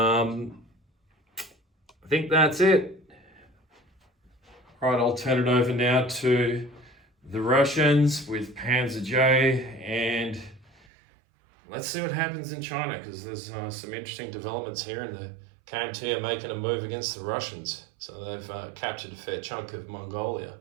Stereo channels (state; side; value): drops out; left; at 10.7 s